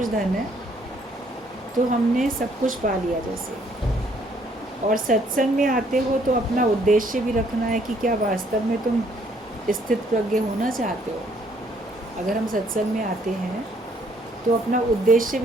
धन है तो हमने सब कुछ पा लिया। जैसे और सत्संग में आते हो तो अपना उद्देश्य भी रखना है कि क्या वास्तव में तुम स्थित प्रज्ञ होना चाहते हो। अगर हम सत्संग में आते हैं तो अपना उद्देश्य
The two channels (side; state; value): both; normal; correlation 0.66